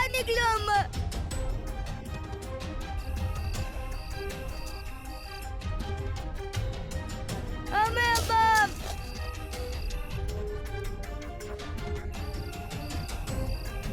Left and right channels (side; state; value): both; identical; correlation 1.00